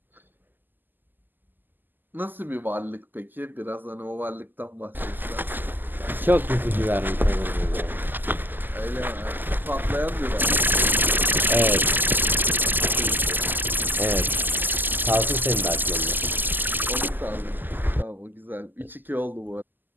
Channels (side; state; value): left; late; 0.089 ms